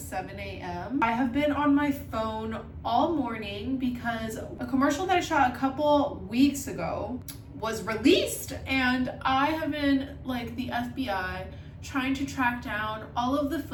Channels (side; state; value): both; identical; correlation 1.00